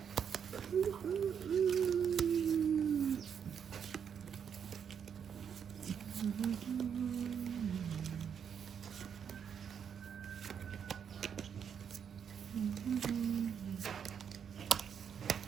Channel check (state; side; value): quieter; left; 7.6 dB